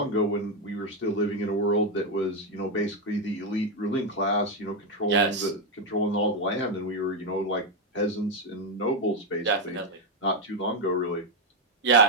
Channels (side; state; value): both; normal; correlation 0.04